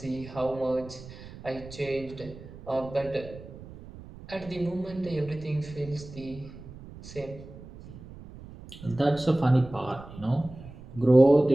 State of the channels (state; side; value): noise; right; rumble, 16 dB below the sound